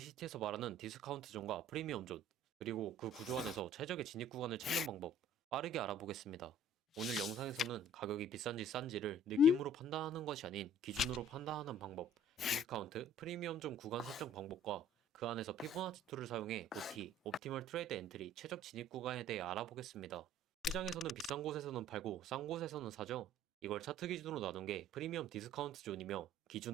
말하는 디스카운트 존과 프리미엄 존, 그리고 그 구조 안에서 최적의 진입 구간을 찾는 방법, 빠르게 알아보겠습니다. 오늘 영상에서는 가격이 비싼지 싼지를 느낌으로 판단하는 것이 아닌 기준으로 판단하는 방법, 디스카운트, 프리미엄 존 구간 설정 방법과 그 안에서 피보나치 툴을 사용해 OT, 옵티멀 트레이드 엔트리, 최적 진입 구간에 대해 알아보겠습니다. 시장에서는 비싼 곳에서는 팔고 싼 곳에서는 사죠. 이걸 차트 기준으로 나눈 게 프리미엄 디스카운트 존이며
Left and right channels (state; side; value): normal; both; correlation 0.52